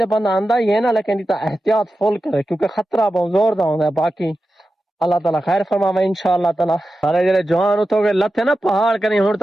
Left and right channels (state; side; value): normal; both; correlation 0.92